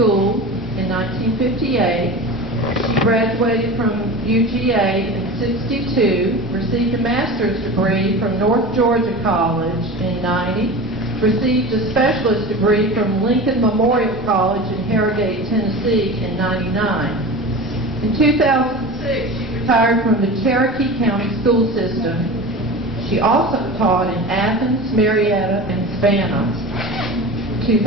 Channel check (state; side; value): normal; both; correlation 0.32